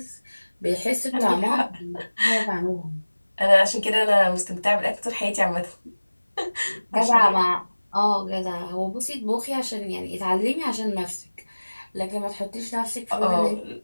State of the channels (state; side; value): inverted; both; correlation -1.00